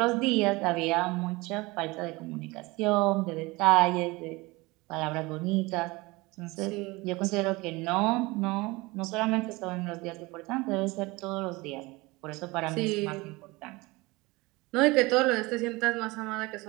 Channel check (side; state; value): left; quieter; 23.0 dB